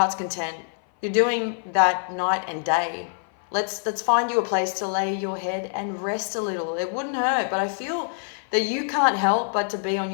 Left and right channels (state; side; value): silent; right; 55 dB below the other